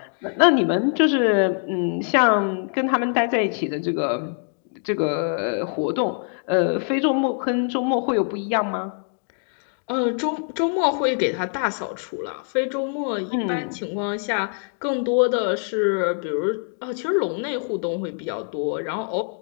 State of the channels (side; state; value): right; silent; 55 dB below the other